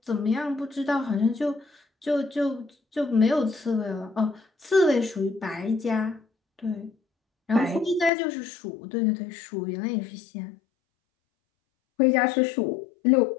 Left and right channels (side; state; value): right; drops out; at 8.1 s